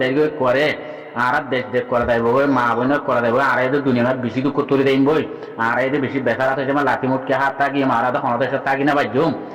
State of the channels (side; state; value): both; identical; correlation 1.00